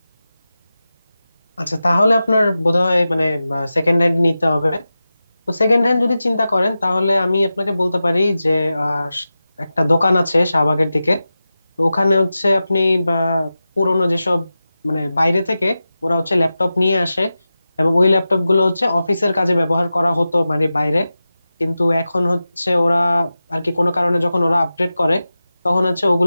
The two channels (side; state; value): both; inverted; correlation -0.94